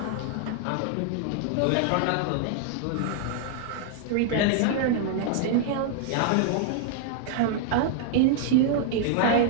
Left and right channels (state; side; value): different; both; correlation -0.01